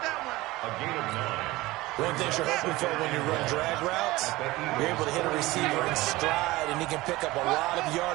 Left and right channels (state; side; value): quieter; left; 19.4 dB